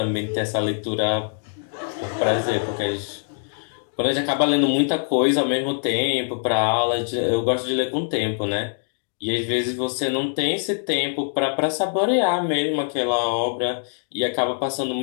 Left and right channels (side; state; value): right; silent; digital silence